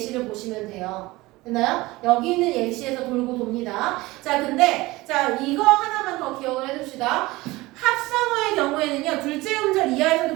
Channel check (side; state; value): left; quieter; 20.3 dB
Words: 보시면 돼요. 됐나요? 여기 있는 예시에서 돌고 돕니다. 자, 근데 자, 이거 하나만 더 기억을 해둡시다. 합성어의 경우에는요, 둘째 음절 이하에서도